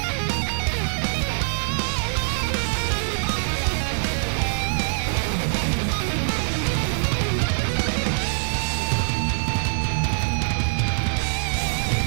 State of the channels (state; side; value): silent; left; 61 dB below the other